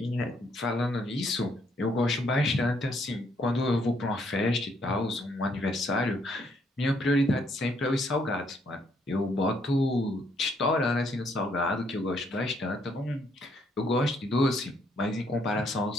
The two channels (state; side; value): normal; both; correlation 0.70